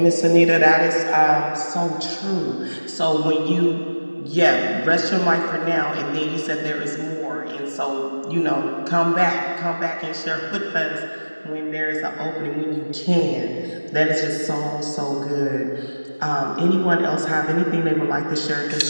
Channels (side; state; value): both; inverted; correlation -1.00